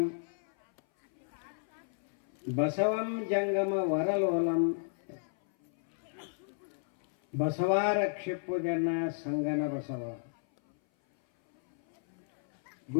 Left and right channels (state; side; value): silent; right; 56 dB below the other